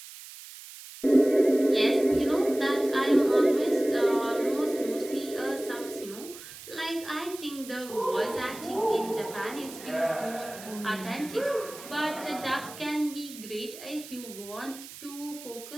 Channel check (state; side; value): noise; right; hiss, 15 dB below the sound